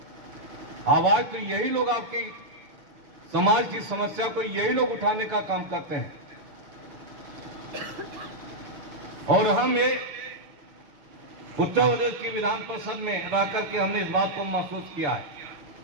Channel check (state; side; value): late; left; 6.8 ms